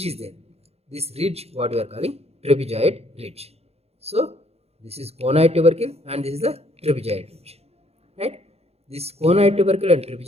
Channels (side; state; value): left; late; 0.30 ms